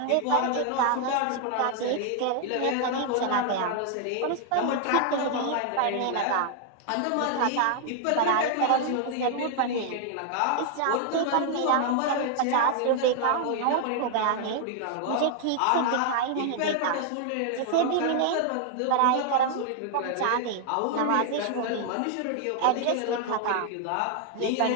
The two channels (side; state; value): both; different; correlation 0.00